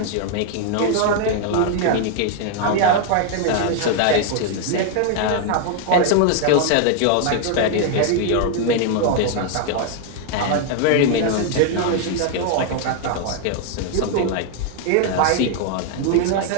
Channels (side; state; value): both; different; correlation 0.00